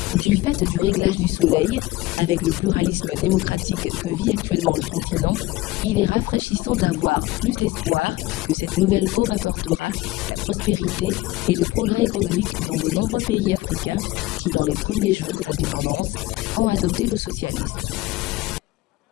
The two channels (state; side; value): quieter; right; 18.7 dB